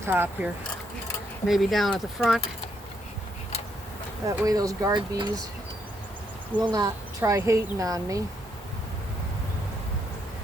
here. Maybe down at the front. That way those guard bees will not try hating on me.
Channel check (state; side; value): normal; both; correlation 0.75